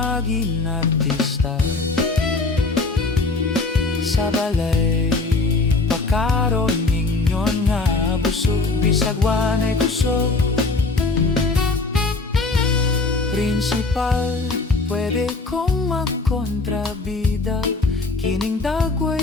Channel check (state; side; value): quieter; right; 3.6 dB